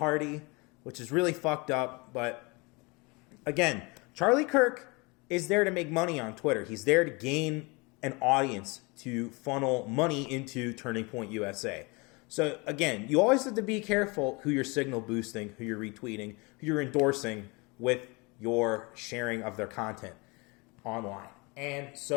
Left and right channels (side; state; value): right; quieter; 27.6 dB